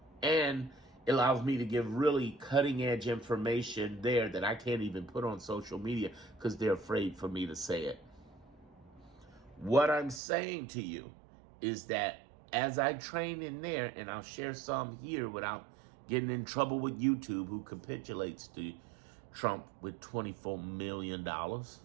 and it allows me to give really cutting edge information there that I can't even put on social media because they're afraid for me to say it. What I'm saying to you is that as I train in there, and I'll share some here without getting in trouble with YouTube, who capitulates to Trump with $24 million,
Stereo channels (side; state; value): left; drops out; at 10.2 s